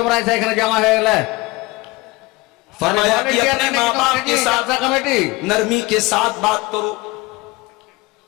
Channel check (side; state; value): right; quieter; 22.1 dB